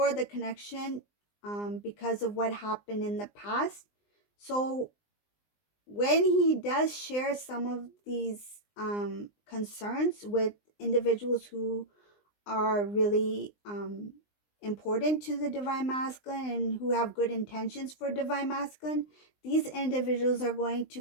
the connection because of what happened in the past. So when he does share some of these concerns with individuals who are really important to the divine masculine and who have good intentions for divine masculine, these individuals are going to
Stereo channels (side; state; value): right; late; 19 ms